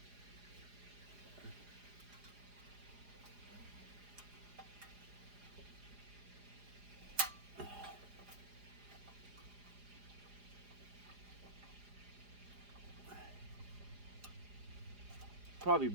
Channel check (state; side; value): late; left; 4.9 ms